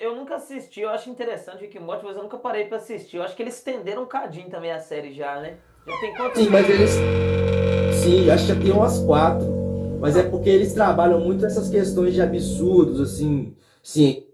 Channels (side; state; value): both; identical; correlation 1.00